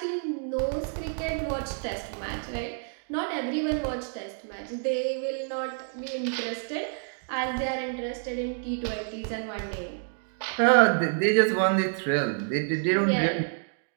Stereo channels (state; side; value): silent; left; 59 dB below the other